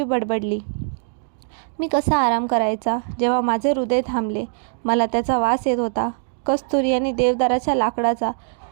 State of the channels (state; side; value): silent; left; digital silence